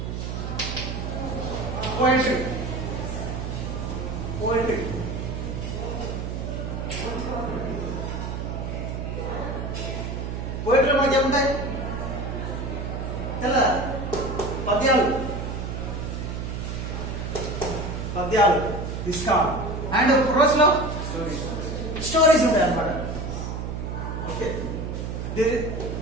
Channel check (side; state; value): right; noise; hum, 4 dB below the sound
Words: poetry. పోయట్రీలో మనకి ఏముంటాయి? తెల్ల పద్యాలు ఇస్తాం. అండ్ ప్రోజ్ లో స్టోరీస్ ఉంటాయి అన్నమాట. Okay,